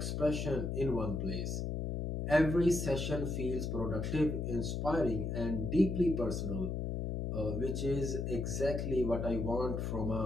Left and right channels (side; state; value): left; noise; hum, 2 dB below the sound